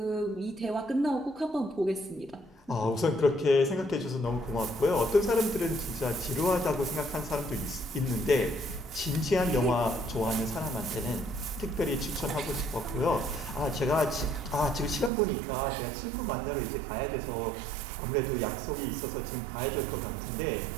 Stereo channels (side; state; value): left; drops out; at 15.1 s